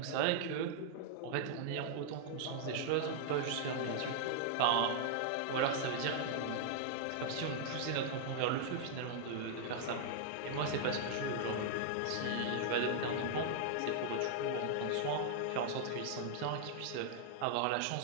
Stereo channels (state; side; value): different; both; correlation -0.01